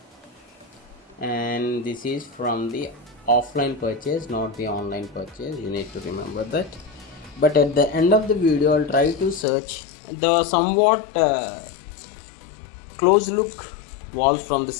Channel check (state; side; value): drops out; right; at 9.5 s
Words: and this is from the offline purchase, not the online purchase. You need to remember that. But at the end of the video, I'll try to search the somewhat close look walls from the